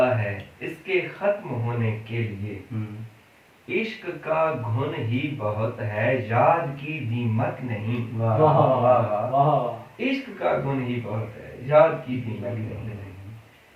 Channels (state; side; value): identical; both; correlation 1.00